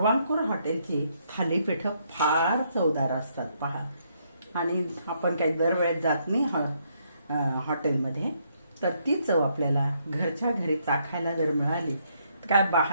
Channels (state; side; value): inverted; both; correlation -0.73